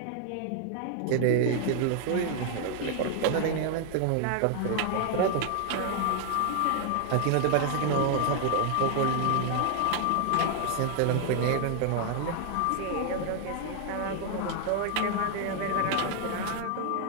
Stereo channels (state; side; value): different; both; correlation 0.00